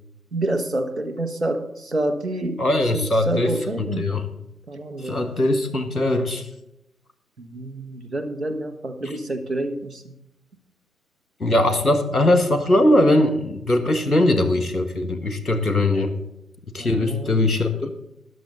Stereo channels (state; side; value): normal; both; correlation 0.74